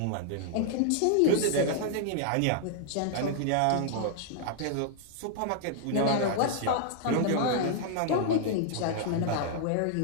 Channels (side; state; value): both; different; correlation -0.01